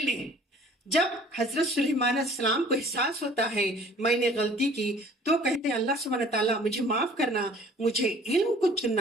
लें। जब हजरत सुलेमान अलैहिस्सलाम को एहसास होता है मैंने गलती की, तो कहते हैं अल्लाह सुब्हानहू तआला मुझे माफ करना, मुझे इल्म को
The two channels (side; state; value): both; normal; correlation 0.52